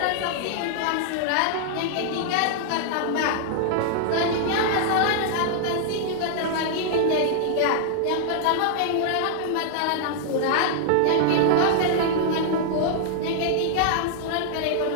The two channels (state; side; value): different; both; correlation -0.01